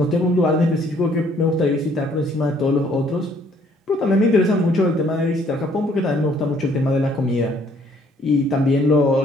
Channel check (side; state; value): both; normal; correlation 0.63